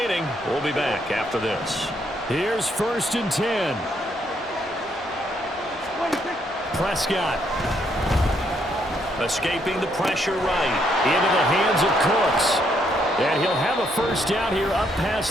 We'll be back after this. Here's 1st and 10. Prescott. Escaping the pressure right. Into the hands of Cooks. And he'll have a first down here up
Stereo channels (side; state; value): both; normal; correlation 0.73